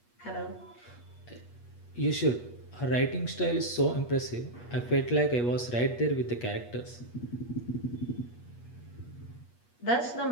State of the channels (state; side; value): late; right; 8.3 ms